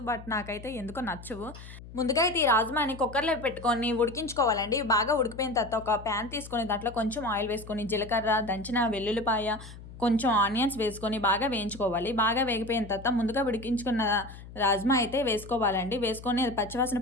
బట్ నాకైతే ఎందుకో నచ్చవు. ముందుగా అయితే ఈ రాజ్మాని కుక్కర్‌లో పెట్టుకొని ఉడికించుకోవాలండి. బాగా ఉడికిపోయిన తర్వాత ఒక పాన్ తీసుకొని దాంట్లో కొంచెం ఆయిల్ వేసుకొని, జీలకర్ర, దంచిన వెల్లుల్లిపాయ, కొంచెం ఆనియన్స్ వేసుకొని బాగా వేయించుకోవాలి. బాగా వేగిపోయిన తర్వాత ముందుగా ఉడికించుకున్న రాజ్మా అయితే వేసుకోవాలండి. వేసుకొని అది పచ్చివాసన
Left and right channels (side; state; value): left; noise; hum, 16 dB below the sound